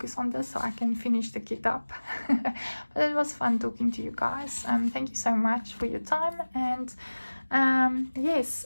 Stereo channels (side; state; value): both; inverted; correlation -1.00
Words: on this so I can finish the kit up. But it was fun talking to you guys. Thank you so much for your time, and yes,